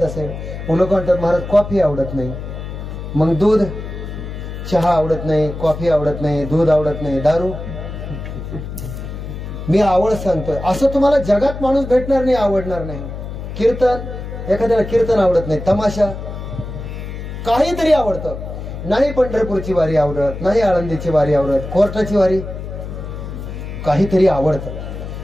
असेल? मग लोक म्हणतात महाराज कॉफी आवडत नाही। मग दूध, चहा आवडत नाही, कॉफी आवडत नाही, दूध आवडत नाही, दारू। मी आवड सांगतोय असं तुम्हाला जगात माणूस भेटणार नाही, आवडणार नाही। कीर्तन, एखाद्याला कीर्तन आवडत नाही, तमाशा काहीतरी आवडतं, नाही पंढरपूरची वारी आवडत, नाही आळंदीची वारी आवडत, कोर्टाची वारी, काहीतरी आवडतं।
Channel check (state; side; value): noise; left; hum, 8 dB below the sound